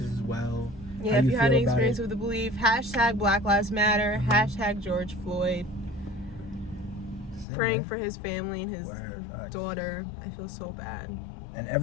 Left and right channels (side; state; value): right; drops out; at 7.5 s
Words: as well. Yeah, if you had any experience with the belief, # Black Lives Matter, # George Floyd. Praying for his family and his daughter. I feel so bad. And